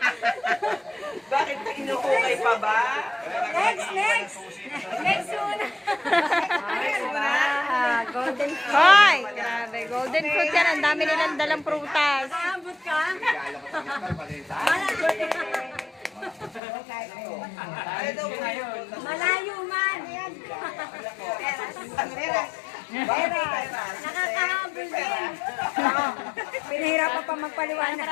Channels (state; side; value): drops out; right; at 16.6 s